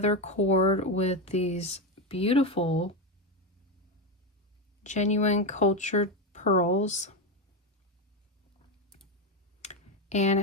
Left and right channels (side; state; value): both; normal; correlation 0.11